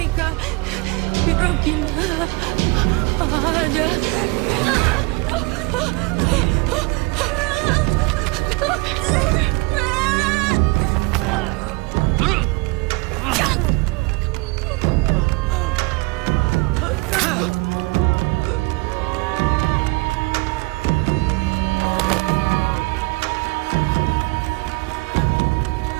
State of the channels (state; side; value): quieter; left; 25.9 dB